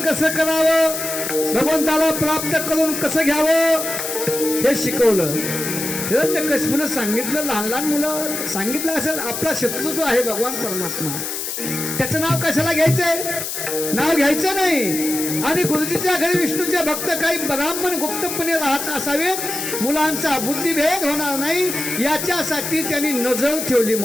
कसं करावं, भगवंताला प्राप्त करून कसं घ्यावं हे शिकवलं. हिरण्यकशिपूने सांगितलं, लहान लहान मुलं सांगितलं असेल आपला शत्रू जो आहे भगवान परमात्मा, त्याचं नाव कशाला घ्यायचंय, नाव घ्यायचं नाही. आणि गुरुजीच्या घरी विष्णूचे भक्त काही ब्राह्मण गुप्तपणे राहत असावेत, मुलांचा बुद्धिभेद होणार नाही याच्यासाठी त्यांनी नजर ठेवली.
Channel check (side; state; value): left; noise; hiss, 4 dB below the sound